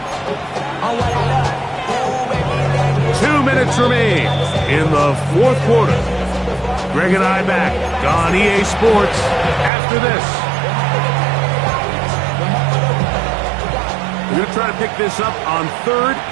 2 minutes remain in the fourth quarter. Greg and I back on EA Sports after this. We're going to try to pick this up on 3rd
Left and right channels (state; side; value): drops out; left; at 9.7 s